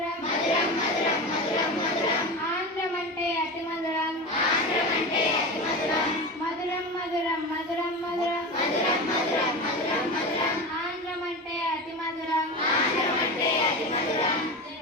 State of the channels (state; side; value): normal; both; correlation 0.25